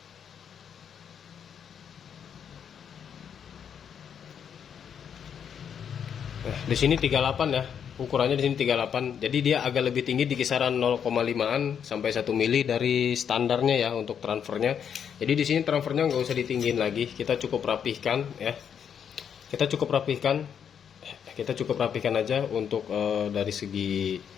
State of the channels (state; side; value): quieter; right; 8.0 dB